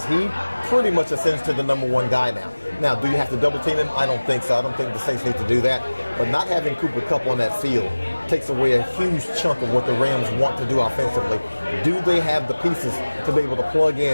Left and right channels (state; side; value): inverted; both; correlation -1.00